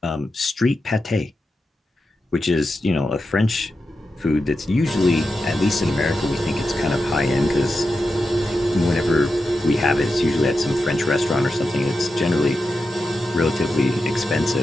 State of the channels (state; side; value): normal; both; correlation 0.89